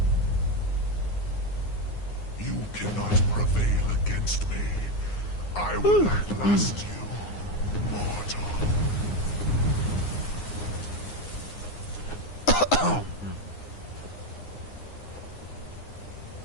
You cannot prevail against me. I will outlast you, mortal.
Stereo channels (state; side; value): late; right; 9.7 ms